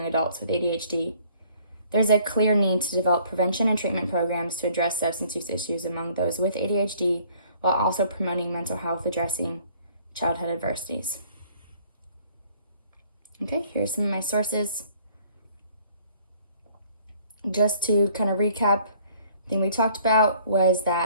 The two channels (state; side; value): inverted; both; correlation -0.59